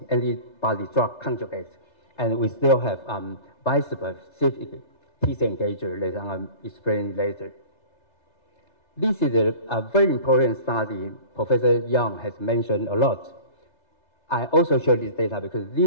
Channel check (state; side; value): late; right; 3.3 ms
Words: antibody drug conjugate. And we still have bispecific T-cell engager that I'll explain later. This is a very important study Professor Yang has mentioned a lot. I also show this data because